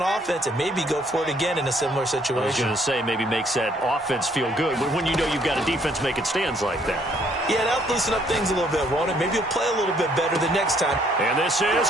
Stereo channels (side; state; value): both; normal; correlation 0.65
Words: offense and maybe go for it again in a similar situation. I was going to say maybe makes that offense feel good when you know you've got a defense making stands like that. Yeah, that'll loosen up things a little bit, won't it? Maybe he'll play a little bit better the next time. And this is